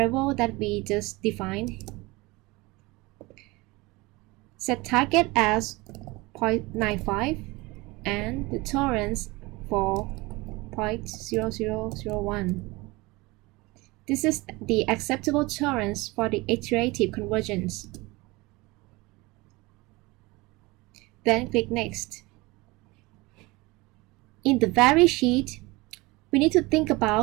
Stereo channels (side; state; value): left; quieter; 23.0 dB